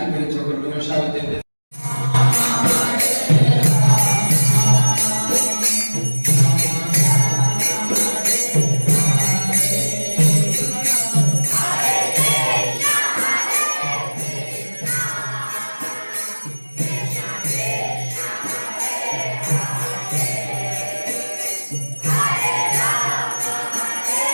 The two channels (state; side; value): inverted; both; correlation -1.00